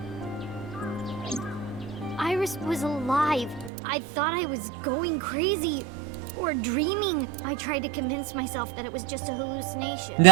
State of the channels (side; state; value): left; drops out; at 3.7 s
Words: Iris was alive. I thought I was going crazy or dreaming. I tried to convince myself that it was just a hallucination.